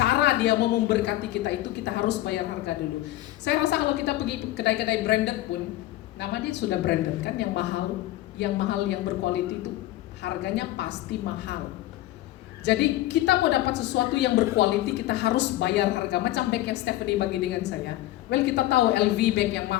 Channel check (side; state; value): right; quieter; 15.9 dB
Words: dia mau memberkati kita itu kita harus bayar harga dulu. Saya rasa kalau kita pergi kedai-kedai branded pun, nama dia sudah branded kan, yang mahal yang berkualitas itu harganya pasti mahal. Jadi kita mau dapat sesuatu yang berkualiti, kita harus bayar harga. Macam bag yang Stephanie bagi dengan saya. Well, kita tahu LV bag yang